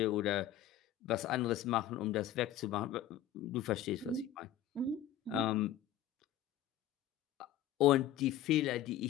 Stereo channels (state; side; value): quieter; right; 11.3 dB